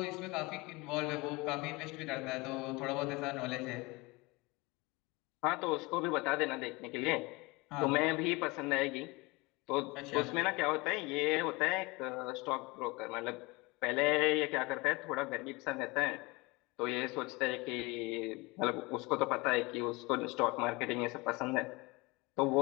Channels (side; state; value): right; quieter; 24.5 dB